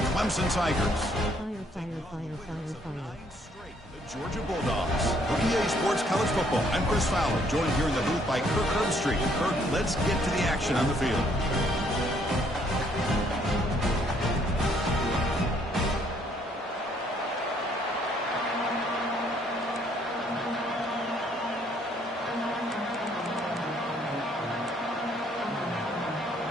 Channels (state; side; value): normal; both; correlation 0.66